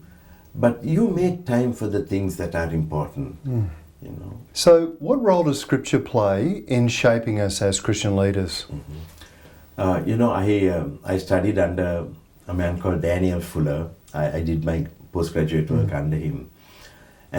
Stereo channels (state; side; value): identical; both; correlation 1.00